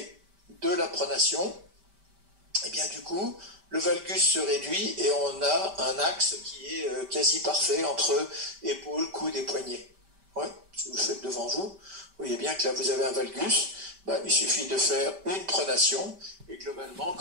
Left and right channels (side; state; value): left; late; 5.1 ms